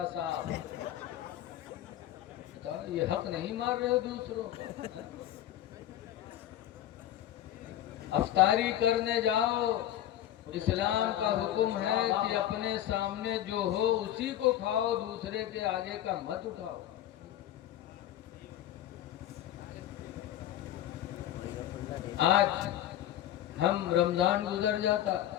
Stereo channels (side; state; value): right; quieter; 12.3 dB